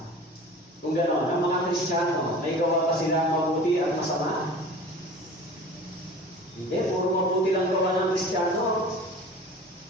Kung gano'n, ang mga Kristiyano, may gawa pa sila mabuti at masama? Hindi, puro mabuti lang gawa ng Kristiyano.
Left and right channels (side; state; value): both; normal; correlation 0.40